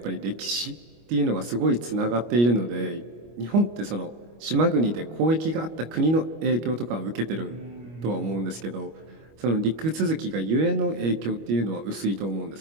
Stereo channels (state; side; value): late; left; 25 ms